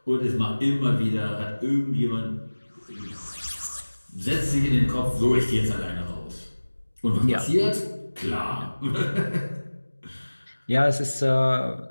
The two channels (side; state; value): both; inverted; correlation -1.00